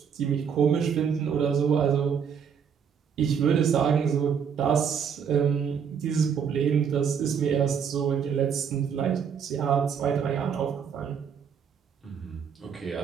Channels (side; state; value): left; quieter; 7.2 dB